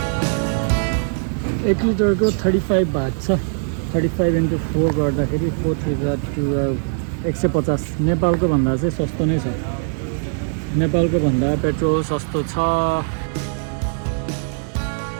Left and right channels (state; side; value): silent; left; digital silence